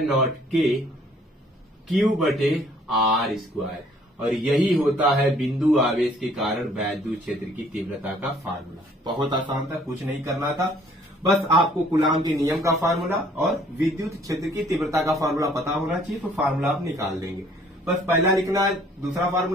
नॉट के क्यू बटे आर स्क्वायर। और यही होता है बिंदु आवेश के कारण वैद्युत क्षेत्र की तीव्रता का फार्मूला। बहुत आसान था, कुछ नहीं करना था, बस आपको कूलाम के नियम का फार्मूला और विद्युत क्षेत्र की तीव्रता का फार्मूला पता होना चाहिए, तो फार्मूला आप निकाल देंगे। बस पहला लिखना है, दूसरा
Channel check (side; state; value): both; normal; correlation 0.59